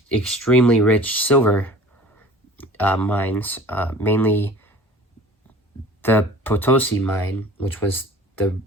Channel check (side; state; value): both; normal; correlation 0.44